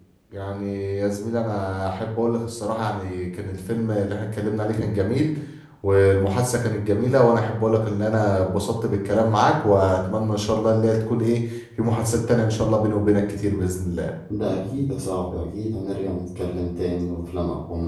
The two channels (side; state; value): both; identical; correlation 1.00